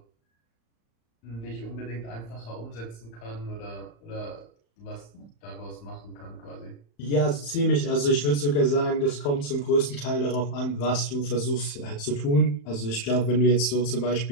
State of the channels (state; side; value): late; right; 35 ms